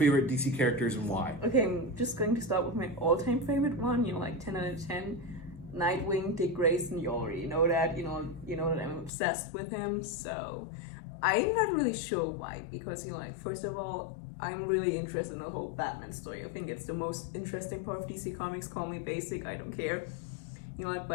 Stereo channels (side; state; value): right; drops out; at 9.1 s